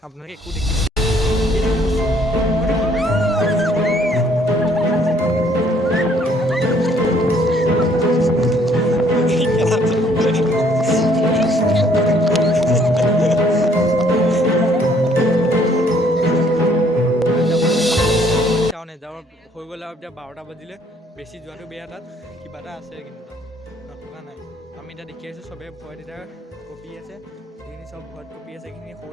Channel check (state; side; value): normal; both; correlation 0.63